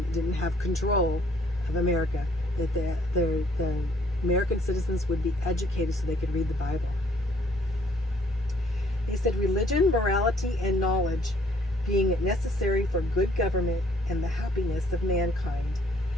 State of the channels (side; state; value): both; normal; correlation 0.62